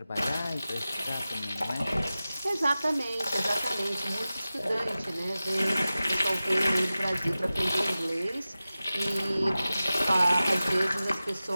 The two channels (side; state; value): both; inverted; correlation -0.96